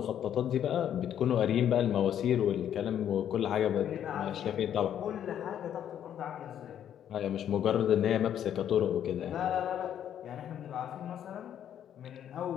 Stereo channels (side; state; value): right; quieter; 9.9 dB